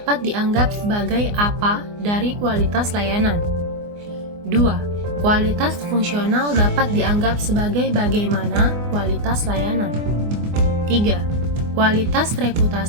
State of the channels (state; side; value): late; left; 24 ms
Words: dianggap sebagai apa dari kualitas layanan. 2. Kualitas fungsional dapat dianggap sebagai bagaimana kualitas layanan. 3. Kualitas